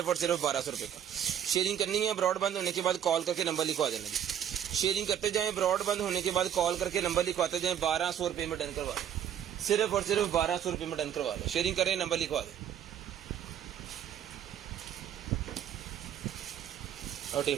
और सिर्फ 1200 रुपये का। शेयरिंग करनी है, ब्रॉड बंद होने के बाद कॉल करके नंबर लिखवा देना जी। शेयरिंग करते जाएं, ब्रॉड बंद होने के बाद कॉल करके नंबर लिखवाते जाएं, 1200 रुपये में डन करवा लें, सिर्फ और सिर्फ 1200 रुपये में डन करवा लें। शेयरिंग करें, नंबर लिखवा दें। और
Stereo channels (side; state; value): left; quieter; 9.6 dB